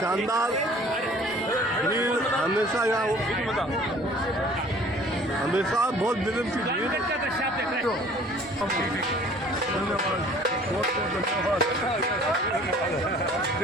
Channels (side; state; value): both; normal; correlation 0.51